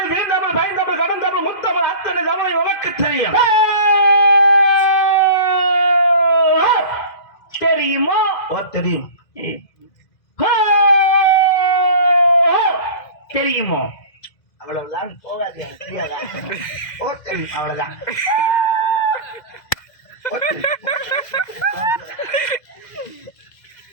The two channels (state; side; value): late; right; 2.0 ms